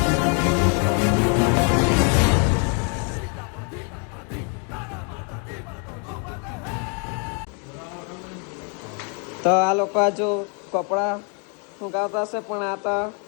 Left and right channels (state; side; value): quieter; right; 38.6 dB